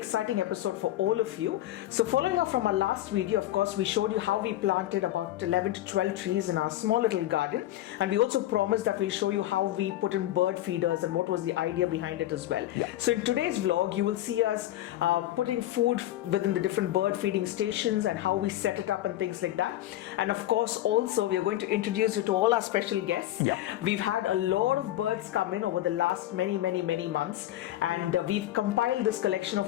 episode for all of you. So following up from our last video, of course, we showed you how we planted about 11 to 12 trees in our small little garden. And we also promised that we'll show you how we put in bird feeders and what was the idea behind it as well. Yeah. So in today's vlog, you will see us putting food within the different bird feeding stations and how we set it up and things like that. And of course, also we are going to introduce you to all our special guests. Yeah. We've had a lot of birds come in over the last many months. And we've compiled this collection of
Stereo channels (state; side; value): quieter; right; 14.2 dB